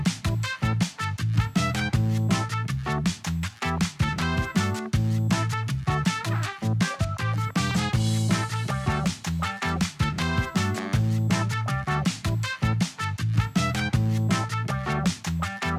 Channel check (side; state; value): both; identical; correlation 1.00